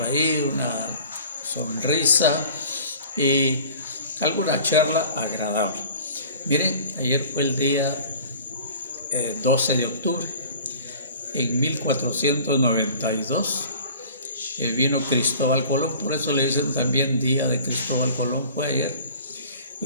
ahí, una sonrisa y alguna charla agradable. Miren, ayer fue el día 12 de octubre. En 1492 vino Cristóbal Colón, por eso le dicen también Día de Cristóbal Colón, fue ayer.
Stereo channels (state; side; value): inverted; both; correlation -0.45